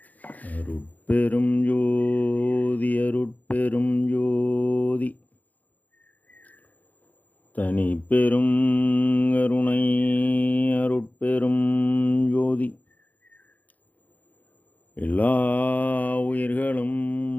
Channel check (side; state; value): right; late; 0.079 ms